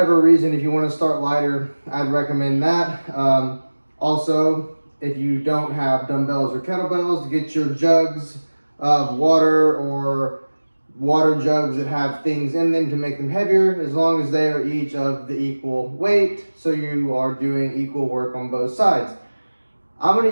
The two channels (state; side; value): inverted; both; correlation -1.00